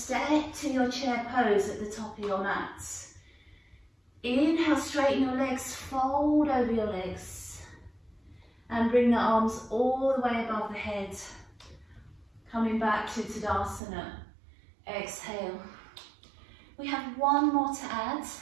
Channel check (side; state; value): left; drops out; at 13.8 s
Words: to your chair pose at the top of your mat. Inhale, straighten your legs, fold over your legs. And bring the arms all the way above the head. Coming back to Tadasana. Exhale. We have one more to add,